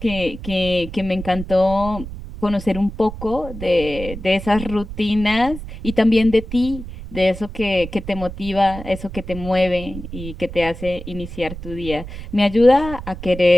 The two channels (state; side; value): noise; right; rumble, 11 dB below the sound